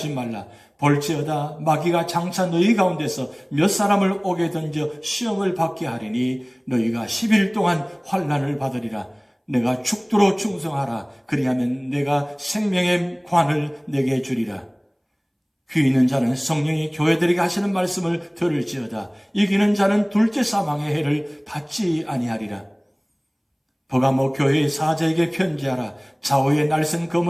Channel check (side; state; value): both; identical; correlation 1.00